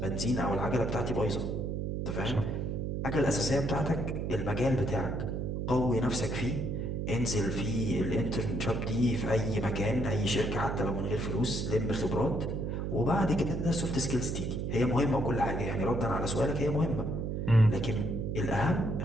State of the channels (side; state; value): right; noise; hum, 2 dB below the sound